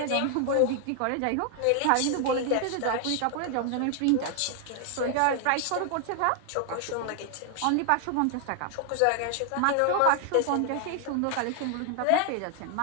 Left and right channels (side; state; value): both; different; correlation 0.00